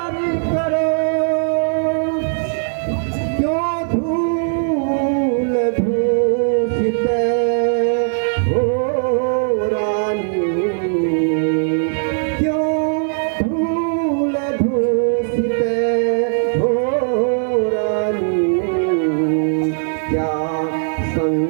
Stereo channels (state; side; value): silent; left; digital silence